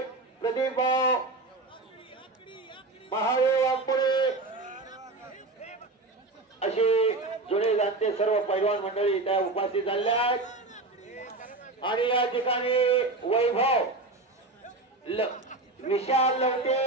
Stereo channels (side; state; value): left; quieter; 3.2 dB